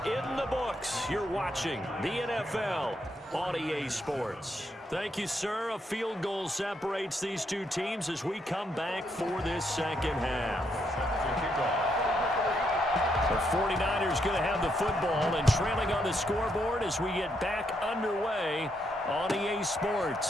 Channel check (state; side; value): normal; both; correlation 0.77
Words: in the books. You're watching the NFL on EA Sports. Thank you, sir. A field goal separates these two teams as we come back for this second half. The 49ers going to have the football and trailing on the scoreboard as we get back underway on EA